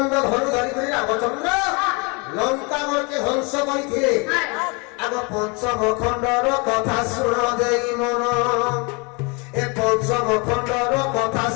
ধনু ধরি করে রামচন্দ্র লঙ্কাগড়কে ধ্বংস করিছিলে আগ পঞ্চম খণ্ডর কথা শুণ দেই মন এ পঞ্চম খণ্ডর কথা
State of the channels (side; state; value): right; quieter; 30.5 dB